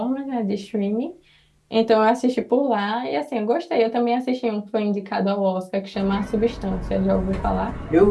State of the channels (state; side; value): identical; both; correlation 1.00